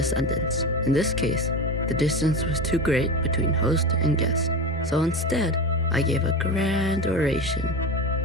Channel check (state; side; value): normal; both; correlation 0.23